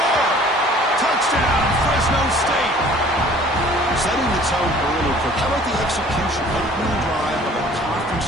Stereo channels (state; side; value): normal; both; correlation 0.52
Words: Touchdown, Fresno State. Setting the tone early. How about the execution? Opening drive of a conference